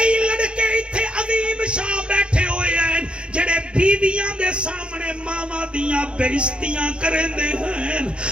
لڑکے اتھے عظیم شاہ بیٹھے ہوئے ہیں جڑے بیویاں دے سامنے ماما دیاں بےعزتیاں کرندے ہیں.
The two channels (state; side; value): late; left; 0.056 ms